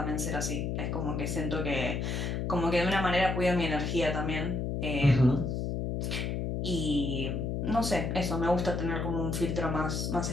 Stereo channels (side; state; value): left; noise; hum, 1 dB below the sound